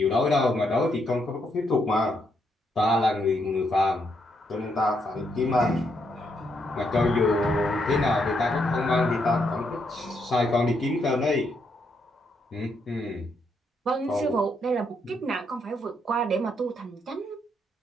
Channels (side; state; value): both; normal; correlation 0.77